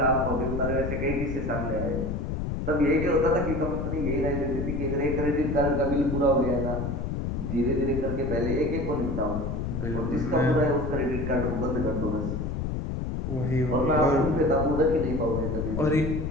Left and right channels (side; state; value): left; noise; rumble, 3 dB below the sound